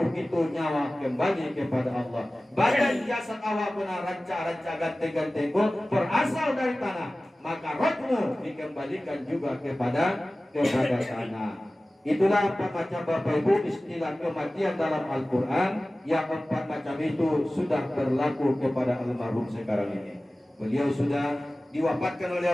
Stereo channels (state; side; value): normal; both; correlation 0.97